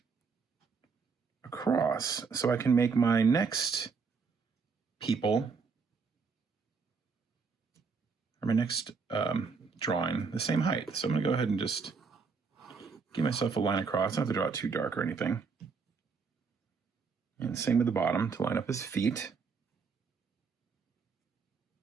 across so I can make my next people, or my next drawing, the same height. So I'm gonna go ahead and just give myself a line across. I don't have to draw it too dark or anything. And same with the bottom to line up his feet.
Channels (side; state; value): left; quieter; 5.1 dB